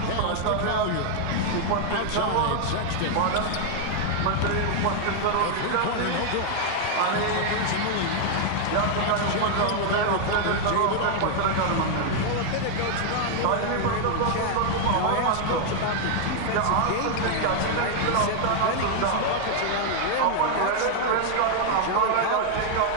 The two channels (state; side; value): different; both; correlation 0.00